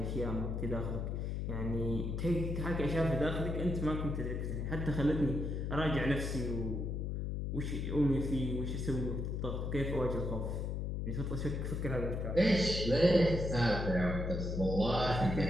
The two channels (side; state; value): left; noise; hum, 2 dB below the sound